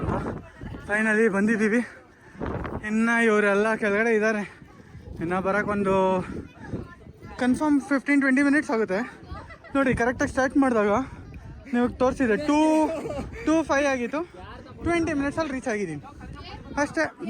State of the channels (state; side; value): identical; both; correlation 1.00